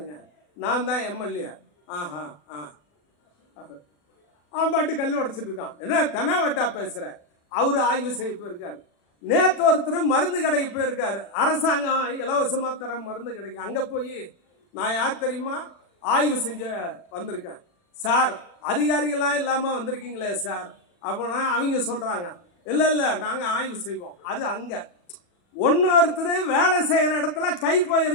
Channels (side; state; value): right; late; 40 ms